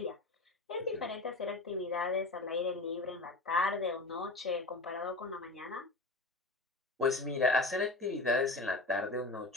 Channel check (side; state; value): right; quieter; 3.1 dB